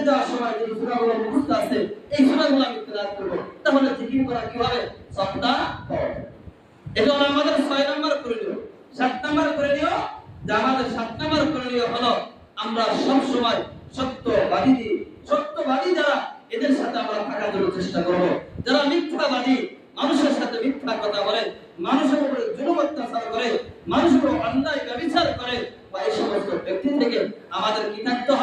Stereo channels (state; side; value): identical; both; correlation 1.00